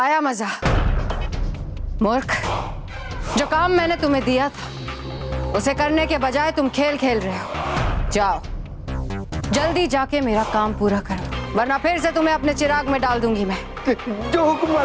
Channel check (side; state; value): both; identical; correlation 1.00